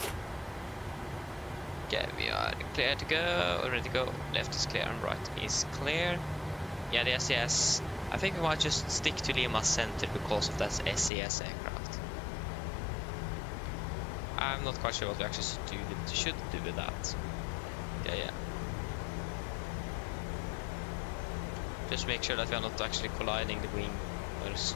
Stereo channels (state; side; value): drops out; right; at 11.1 s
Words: Okay, we are clear to go, ready to go. Left is clear and right is clear. Yeah, the SES. I think we might just stick to Lima Center because of that SES aircraft. I'm not quite sure what we actually should do with that. Yeah. Just make sure that we are not actually colliding the wing or